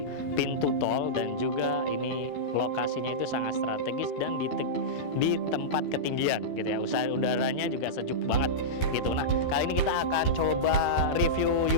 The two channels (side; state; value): right; late; 12 ms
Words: pintu tol, dan juga ini lokasinya itu sangat strategis dan di tempat ketinggian gitu ya. Udaranya juga sejuk banget gitu. Nah, kali ini kita akan coba review